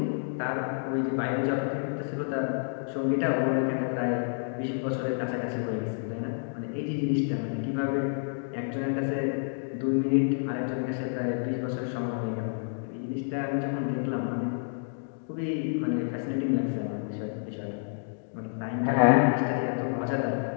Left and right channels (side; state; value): right; silent; digital silence